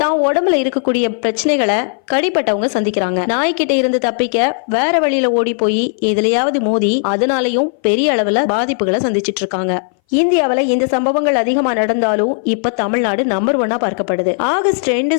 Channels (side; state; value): right; silent; 62 dB below the other